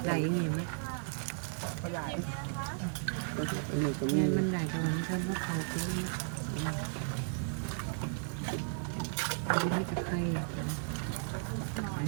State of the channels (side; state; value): left; silent; 54 dB below the other